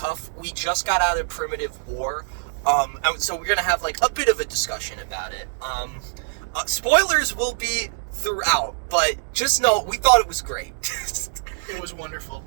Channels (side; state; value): left; silent; digital silence